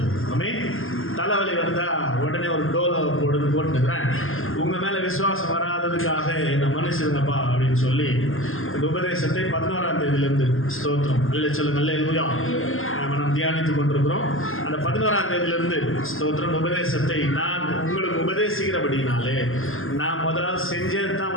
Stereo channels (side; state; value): right; late; 0.60 ms